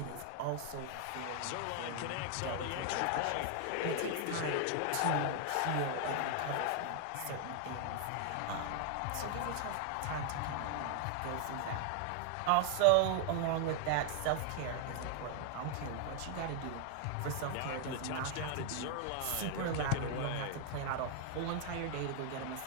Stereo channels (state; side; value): different; both; correlation 0.00